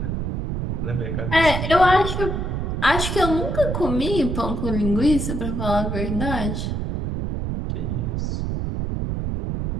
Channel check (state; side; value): noise; right; rumble, 2 dB below the sound